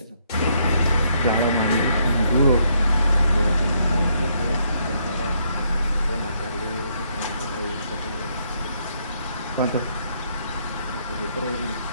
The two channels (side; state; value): both; inverted; correlation -0.73